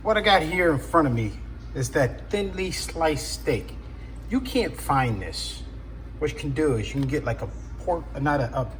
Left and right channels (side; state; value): both; identical; correlation 1.00